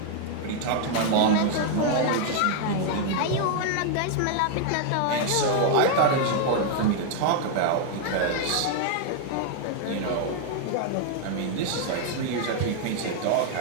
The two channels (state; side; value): different; both; correlation 0.00